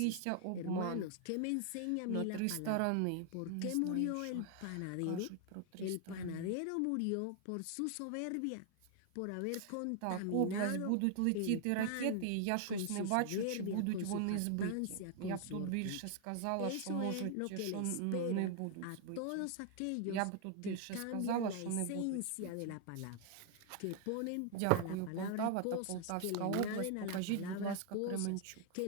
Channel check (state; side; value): different; both; correlation 0.00